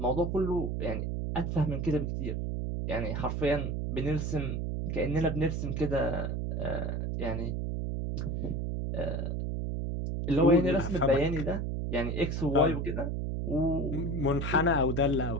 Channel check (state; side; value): noise; right; hum, 1 dB below the sound